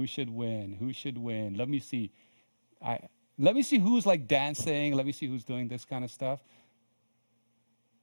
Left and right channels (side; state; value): both; inverted; correlation -1.00